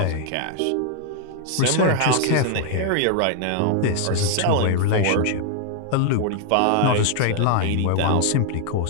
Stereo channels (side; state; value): both; different; correlation 0.00